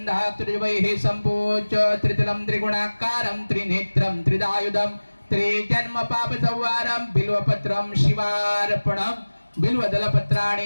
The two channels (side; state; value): both; inverted; correlation -1.00